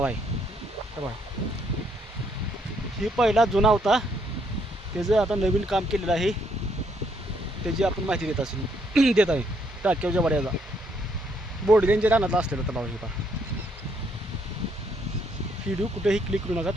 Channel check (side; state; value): both; normal; correlation 0.71